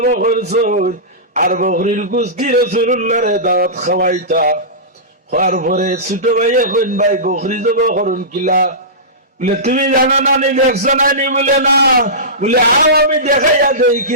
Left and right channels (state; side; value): normal; both; correlation -0.19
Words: করছুন, আর বকরির কুস্তি রাসূলুল্লাহরে দাওয়াত খাওয়াইতা। হওয়ার পরে ছোট ভাইয়ে কইন, ভাই বকরি জব করুন কিলা? বলে তুমি জানো নানি, দেখছো নানি? বলে না। বলে আও আমি দেখাইয়া দেই